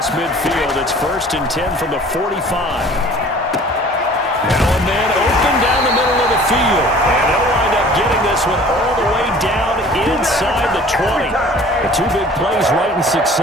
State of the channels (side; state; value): both; normal; correlation 0.48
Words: midfield. It's 1st and 10 from the 45. Now a man open down the middle of the field. And they'll wind up getting this one all the way down inside the 20. The two big plays right in